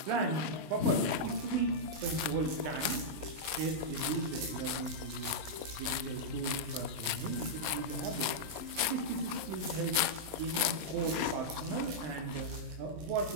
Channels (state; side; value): late; left; 20 ms